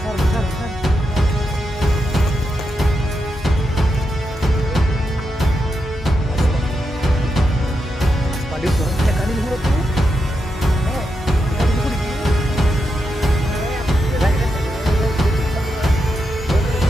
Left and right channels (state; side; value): normal; both; correlation 0.85